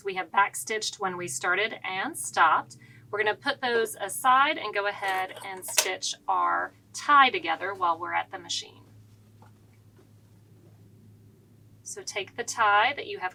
We have backstitched when we started and stopped. We're going to put those aside and go ahead and stitch our tie together while we're at the machine. So take the tie that you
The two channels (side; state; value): both; identical; correlation 1.00